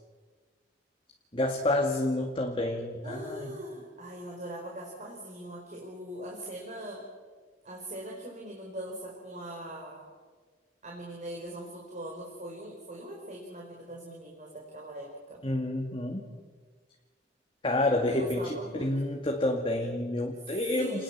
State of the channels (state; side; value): normal; both; correlation 0.47